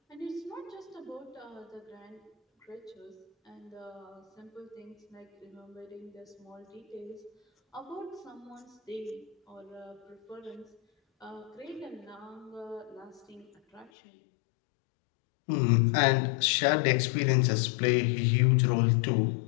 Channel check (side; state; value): right; drops out; at 13.9 s